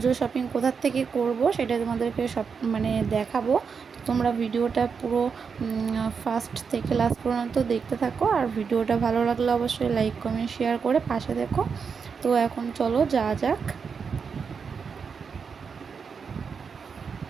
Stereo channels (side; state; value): left; quieter; 5.9 dB